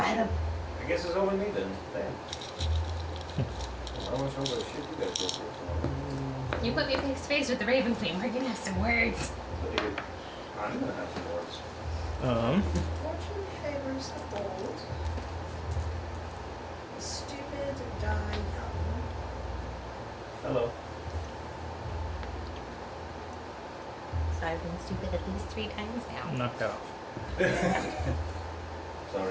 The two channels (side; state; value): both; identical; correlation 1.00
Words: them. I guess it's only me then. Damn. Well, how much over shit you guys go through? You put me face to face with the Raven Queen. We're gonna have some words. I'm gonna have some words. Fortune favors the bold. The stupid die young. Hello. So I've been stupid at least 3 times now. Knocked off.